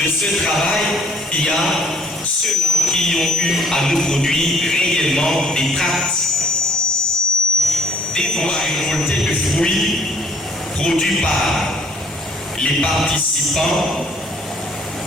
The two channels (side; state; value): both; normal; correlation 0.59